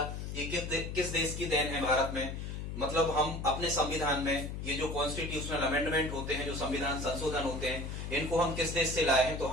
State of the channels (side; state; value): left; noise; hum, 6 dB below the sound